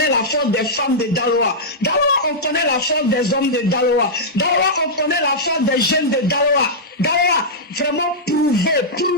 la force des femmes de Daloa. Daloa, on connaît la force des hommes de Daloa. Daloa, on connaît la force des jeunes de Daloa. Daloa, vraiment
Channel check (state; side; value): normal; both; correlation -0.10